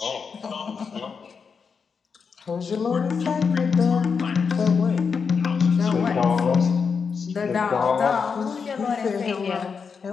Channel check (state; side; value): quieter; right; 5.8 dB